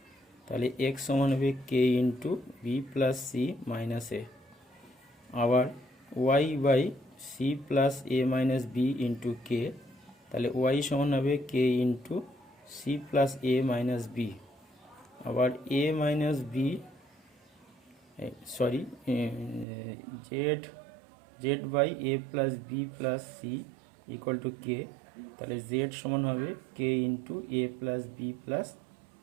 তাহলে এক্স সমান হবে k into b plus c minus a. আবার y by c plus A minus B into k, তাহলে ওয়াই সমান হবে কে ইন্টু সি প্লাস এ minus b. আবার a minus b z by A plus B plus c equal to k, তাহলে z সমান হবে k into A plus B plus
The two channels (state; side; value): drops out; left; at 19.7 s